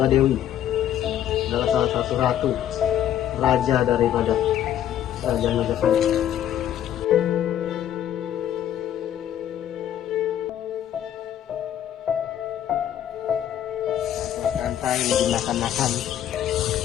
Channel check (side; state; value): right; quieter; 10.9 dB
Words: Adalah salah satu ratu, raja daripada Kerajaan Majapahit. Santai dimakan-makan